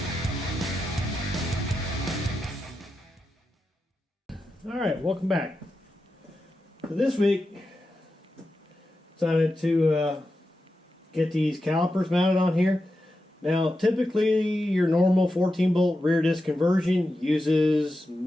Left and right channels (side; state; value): both; normal; correlation 0.89